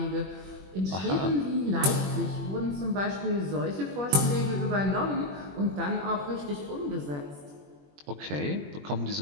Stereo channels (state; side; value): late; left; 21 ms